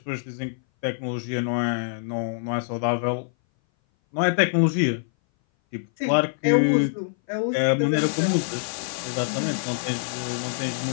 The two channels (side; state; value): right; silent; 58 dB below the other